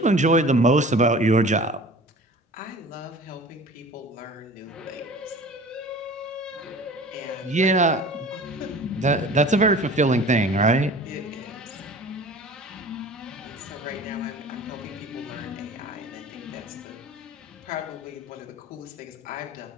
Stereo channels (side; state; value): both; normal; correlation 0.42